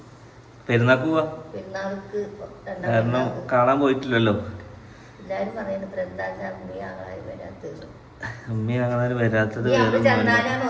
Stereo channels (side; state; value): both; identical; correlation 1.00